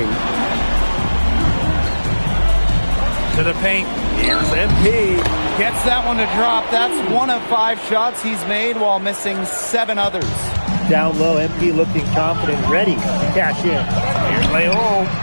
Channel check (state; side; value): inverted; both; correlation -1.00